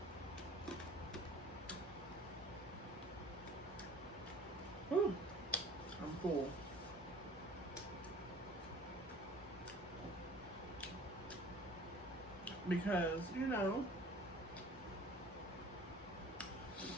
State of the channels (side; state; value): both; normal; correlation 0.47